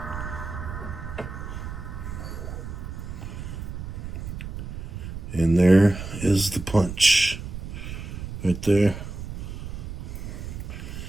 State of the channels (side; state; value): right; noise; rumble, 7 dB below the sound